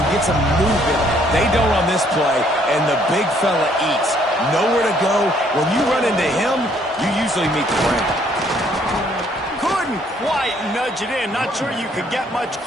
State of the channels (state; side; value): normal; both; correlation 0.65